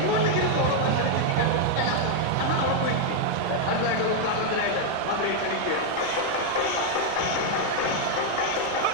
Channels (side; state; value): both; different; correlation 0.00